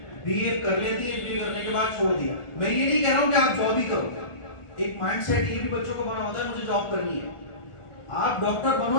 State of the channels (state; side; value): late; right; 1.4 ms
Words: बीए कर लेती है, बीए करने के बाद छोड़ दिया। मैं ये नहीं कह रहा हूं कि आप जॉब ही करो, एक माइंडसेट ये भी बच्चों को बना होता है मुझे जॉब करनी है। आप डॉक्टर